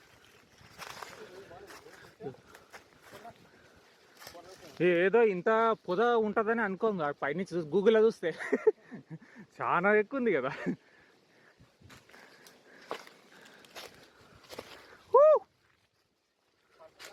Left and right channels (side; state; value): both; identical; correlation 1.00